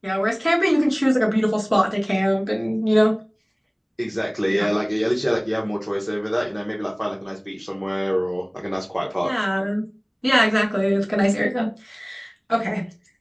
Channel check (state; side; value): identical; both; correlation 1.00